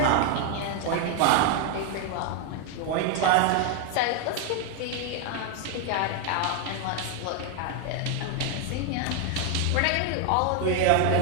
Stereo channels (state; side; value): different; both; correlation 0.01